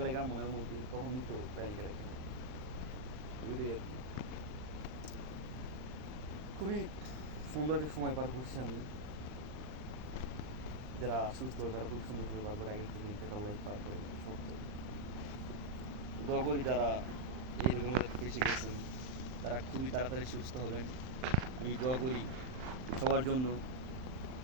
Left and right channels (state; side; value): late; left; 39 ms